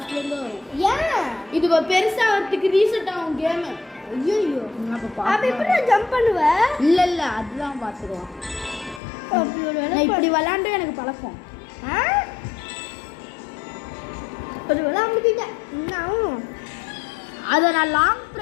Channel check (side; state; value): right; drops out; at 9.0 s